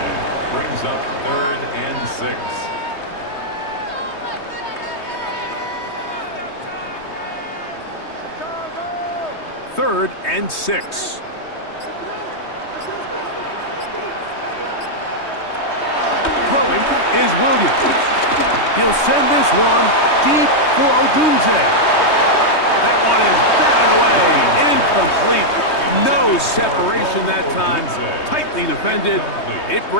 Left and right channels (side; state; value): right; late; 3.2 ms